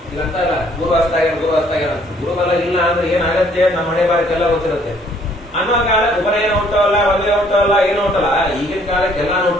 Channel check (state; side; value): normal; both; correlation 0.62